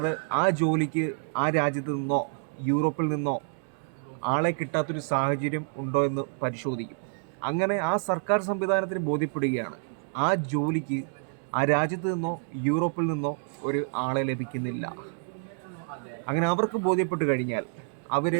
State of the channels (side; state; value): left; silent; 59 dB below the other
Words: ആ ജോലിക്ക് ആ രാജ്യത്ത് നിന്നോ യൂറോപ്പിൽ നിന്നോ ആളെ കിട്ടാത്തൊരു സാഹചര്യം ഉണ്ടോ എന്ന് പരിശോധിക്കും. അങ്ങനെ ആ സർക്കാർ സംവിധാനത്തിന് ബോധ്യപ്പെടുകയാണ് ആ ജോലിക്ക് ആ രാജ്യത്ത് നിന്നോ യൂറോപ്പിൽ നിന്നോ ഒരു ആളെ ലഭിക്കുന്നില്ല. അങ്ങനെ അവർക്ക് ബോധ്യപ്പെട്ട് കഴിഞ്ഞാൽ അവർ